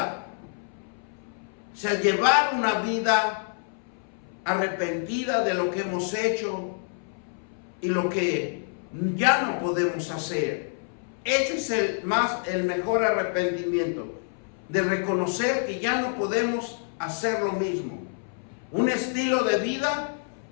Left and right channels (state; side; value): silent; right; 60 dB below the other